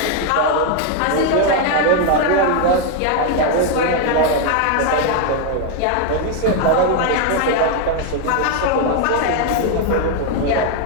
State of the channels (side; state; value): both; different; correlation 0.01